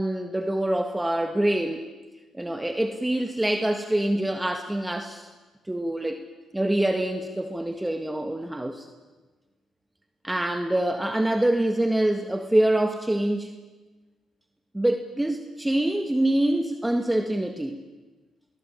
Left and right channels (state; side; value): normal; both; correlation 0.97